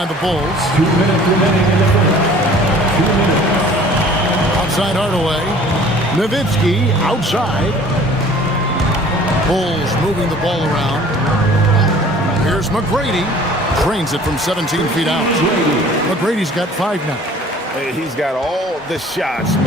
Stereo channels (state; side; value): normal; both; correlation 0.50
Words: the Bulls. 2 minutes remaining in the first. 2 minutes. Outside Hardaway. Nowitzki outside. Bulls moving the ball around. Here's McGrady. Trains it from 17 feet out. McGrady's got 5 now. He's got all the shots.